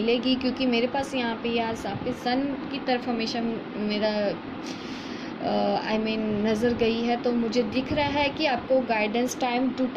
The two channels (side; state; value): both; identical; correlation 1.00